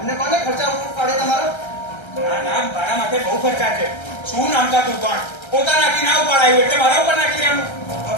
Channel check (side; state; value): right; late; 1.3 ms